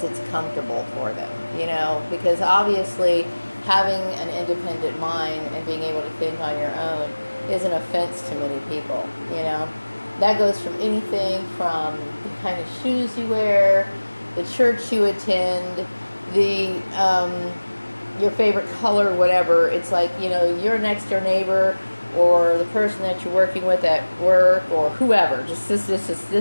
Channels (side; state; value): both; inverted; correlation -1.00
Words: it's comfortable for them, because obviously having an independent mind and being able to think on your own is an offense to many people, That goes from anything from the kind of shoes you wear, the church you attend, the your favorite color, whatever. It's like, your next door neighbor or the person that you're working with at work or whoever, this is